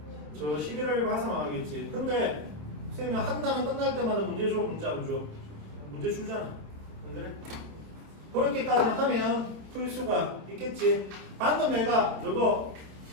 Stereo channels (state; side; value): late; left; 27 ms